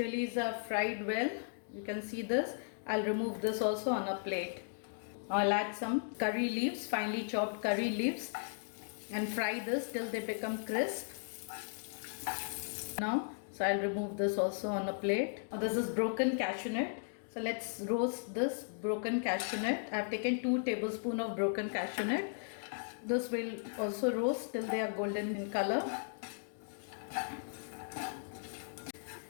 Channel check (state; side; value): silent; right; digital silence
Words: are fried well. You can see this. I'll remove this also on a plate. I'll add some curry leaves, finely chopped curry leaves and fry this till they become crisp. Now, so I'll remove this also on a plate. Now, this is broken cashew nut. So let's roast this broken cashew nut. I've taken 2 tablespoons of broken cashew nut. This will also roast till they are golden in color.